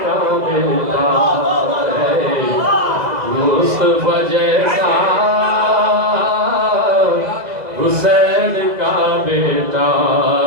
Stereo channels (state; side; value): late; left; 2.0 ms